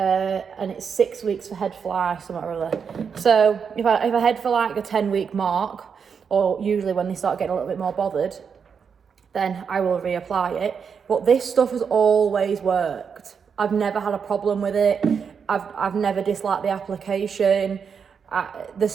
it's 6 weeks for head fly, something or other. So if I head for like the 10-week mark, or usually when they start getting a little bit more bothered, then I will reapply it. But this stuff has always worked. I've never had a problem with it. I've never disliked the application. The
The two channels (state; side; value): quieter; left; 6.5 dB